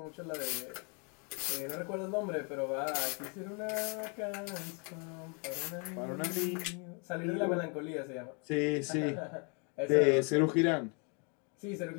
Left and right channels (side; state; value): right; quieter; 35.8 dB